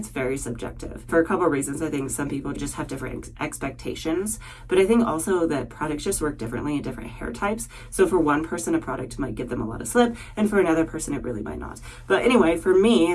very subjective. For a couple of reasons, I think some people just have different expectations, but I think also that products just work differently in different hair types. So for one person, a product might give them a lot of slip, and for another person, it really might not. But anyway, for me,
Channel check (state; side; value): identical; both; correlation 1.00